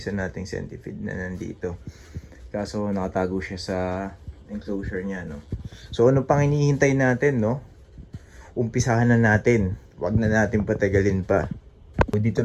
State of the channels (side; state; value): both; identical; correlation 1.00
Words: nating centipede na nandito. Kaso nakatago siya sa enclosure niya, no? So ano pang hinihintay natin, no? Umpisahan na natin. Wag na natin patagalin pa. So, dito